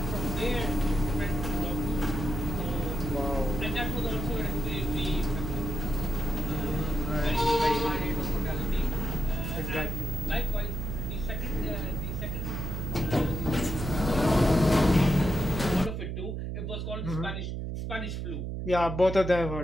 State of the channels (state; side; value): noise; right; hum, 4 dB below the sound